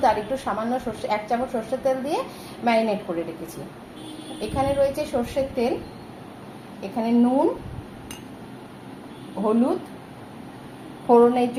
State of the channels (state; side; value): identical; both; correlation 1.00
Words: আর একটু সামান্য সর্ষে, 1 চামচ সর্ষের তেল দিয়ে ম্যারিনেট করে রেখেছি। এখানে রয়েছে সর্ষের তেল, এখানে নুন, হলুদ, ফোড়নের